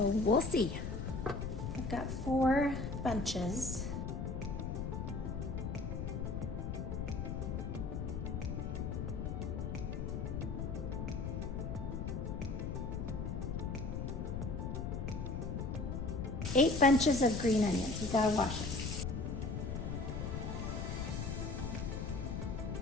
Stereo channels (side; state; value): left; noise; rumble, 3 dB below the sound